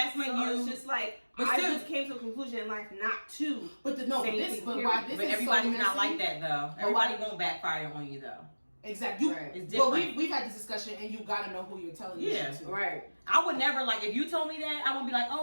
when So you. it's just like But I still- just came to a conclusion in life not to. but say why anything, this But is everybody's so not messy. like that though. Everybody won't backfire on you though. Exactly. Right. It's Well, different. we've had this discussion, and you gotta know who you're telling this Yeah. shit to. Right. I would never like if you told me that. I wouldn't be like,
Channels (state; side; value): inverted; both; correlation -1.00